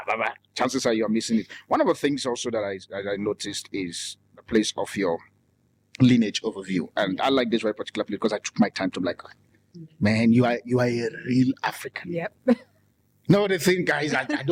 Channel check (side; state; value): both; identical; correlation 1.00